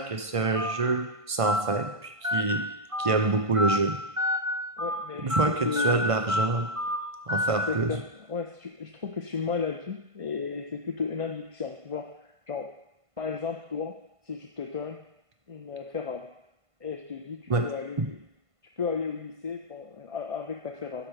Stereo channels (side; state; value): left; late; 1.5 ms